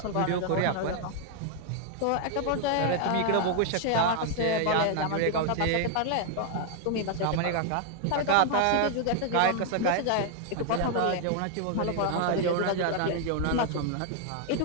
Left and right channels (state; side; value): different; both; correlation 0.00